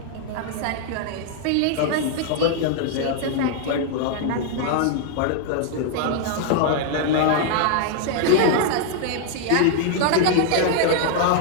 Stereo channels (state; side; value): different; both; correlation 0.00